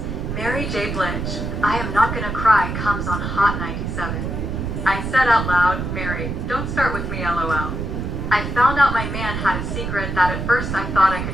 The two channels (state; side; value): noise; right; rumble, 4 dB below the sound